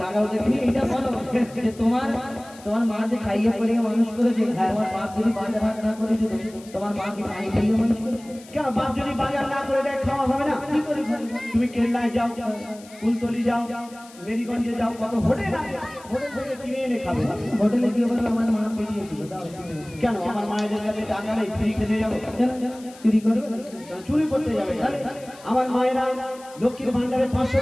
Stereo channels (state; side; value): noise; left; hiss, 22 dB below the sound